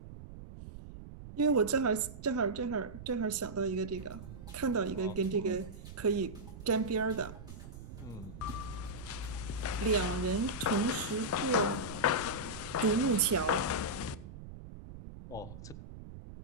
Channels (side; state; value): right; noise; rumble, 13 dB below the sound